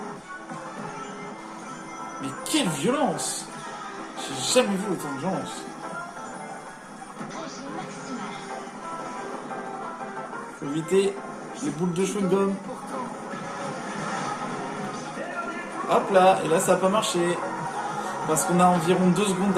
Mais quelle violence! J'ai jamais vu autant de violence. Régime maximal. Faut éviter les boules de chewing-gum. Hop là, et là ça a pas marché. Parce qu'on a environ 2 secondes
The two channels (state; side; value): identical; both; correlation 1.00